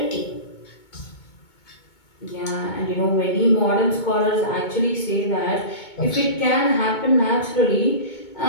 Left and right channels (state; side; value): late; right; 2.2 ms